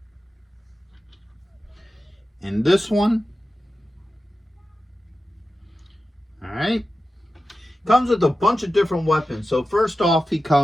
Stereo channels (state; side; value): normal; both; correlation 0.93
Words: and this one. All right. Comes with a bunch of different weapons. So first off, he